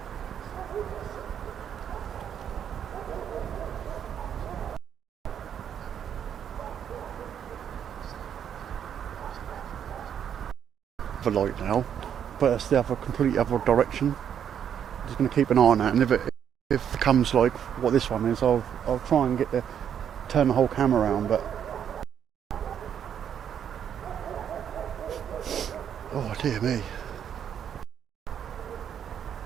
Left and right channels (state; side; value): quieter; left; 8.8 dB